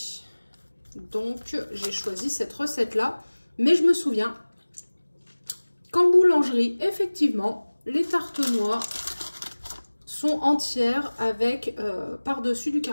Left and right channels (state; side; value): inverted; both; correlation -1.00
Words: Donc, j'ai choisi cette recette-là. Mais je me souviens qu'en boulangerie, effectivement, les tartes noix sont entières avec par-dessus du